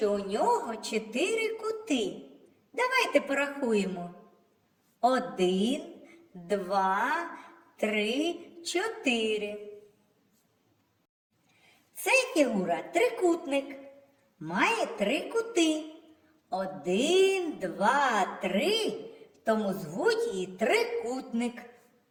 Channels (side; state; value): both; identical; correlation 1.00